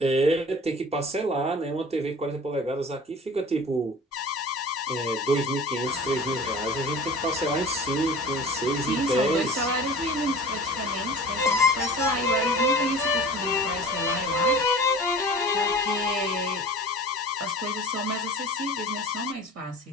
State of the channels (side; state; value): both; normal; correlation 0.40